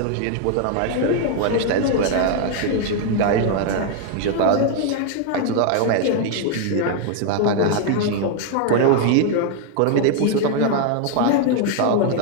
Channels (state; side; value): different; both; correlation 0.00